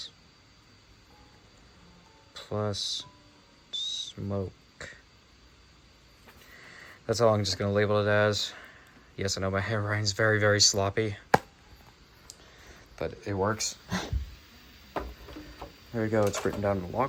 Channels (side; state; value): both; identical; correlation 1.00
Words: plus smoke. That's all I'm just going to label it as. Yes, I know my handwriting's very, very sloppy, but it works. There we go, it's written down in the